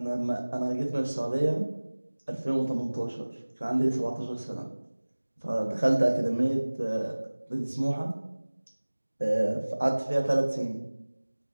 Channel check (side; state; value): both; inverted; correlation -1.00